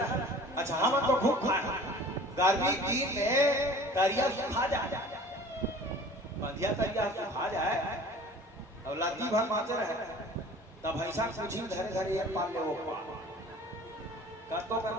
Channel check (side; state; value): both; normal; correlation 0.45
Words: अच्छा हम तो खूब खाए गर्मी दिन में तरिया सुखा जाए, बंधिया तरिया सुखा जाए और लाती भर माचे रहे तब ऐसा कुछ ही धरे धरे एक पाल ले वो कतो कर